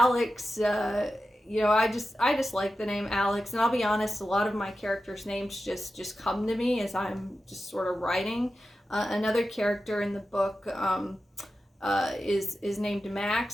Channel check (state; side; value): normal; both; correlation 0.92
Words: you know, I just like the name Alex, and I'll be honest, a lot of my characters' names just come to me as I'm just sort of writing. Another character in the book is named